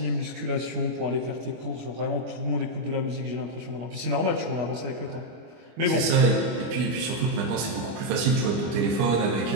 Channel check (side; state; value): left; late; 25 ms